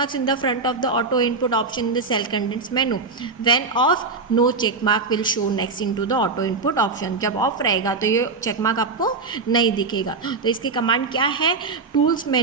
in the front of the auto input option in the cell contents menu. When off no check mark will show next into the auto input option. जब ऑफ रहेगा तो ये चेक मार्क आपको नहीं दिखेगा। तो इसकी कमांड क्या है, टूल्स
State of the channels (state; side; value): quieter; left; 4.2 dB